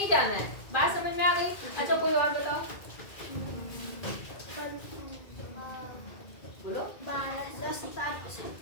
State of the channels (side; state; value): right; late; 2.2 ms